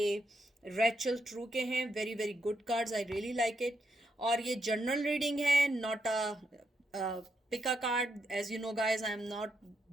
रेचल ट्रू के हैं। Very very good cards, I really like it. और ये जनरल रीडिंग है, not a pick a card. As you know guys, I am not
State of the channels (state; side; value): normal; both; correlation 0.80